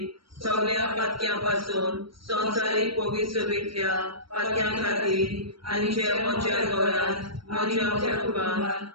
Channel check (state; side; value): late; left; 0.74 ms